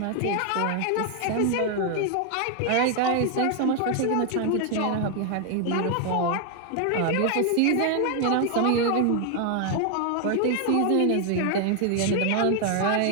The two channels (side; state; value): both; different; correlation 0.00